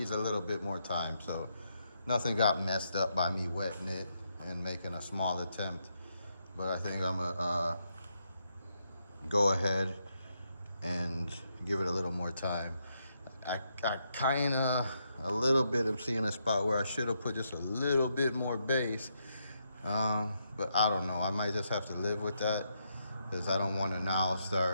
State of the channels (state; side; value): inverted; both; correlation -0.80